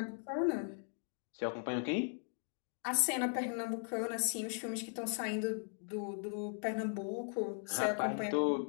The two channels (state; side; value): silent; right; 52 dB below the other